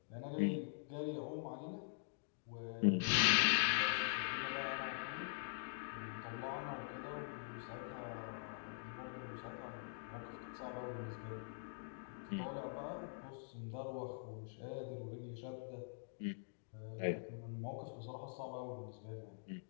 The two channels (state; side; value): silent; right; digital silence